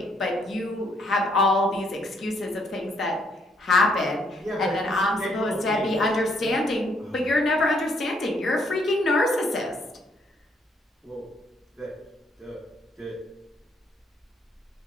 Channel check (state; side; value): normal; both; correlation 0.70